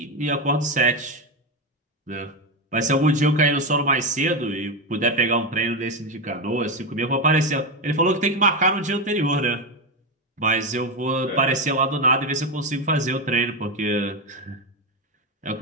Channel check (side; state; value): both; normal; correlation 0.12